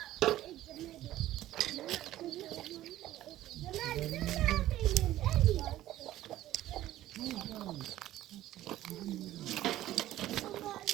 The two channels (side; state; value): left; quieter; 14.1 dB